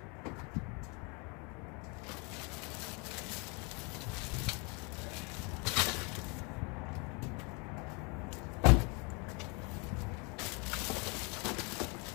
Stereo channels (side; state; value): right; quieter; 31.7 dB